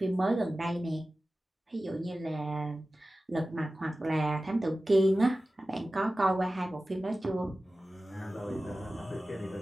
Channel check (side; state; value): both; normal; correlation 0.96